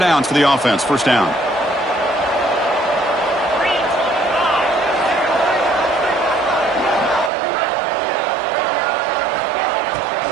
for the offense. First down.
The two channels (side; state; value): left; drops out; at 7.3 s